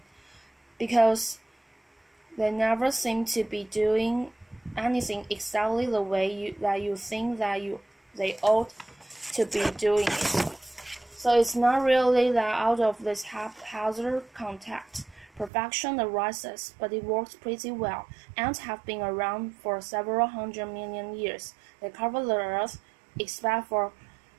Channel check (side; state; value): left; drops out; at 15.5 s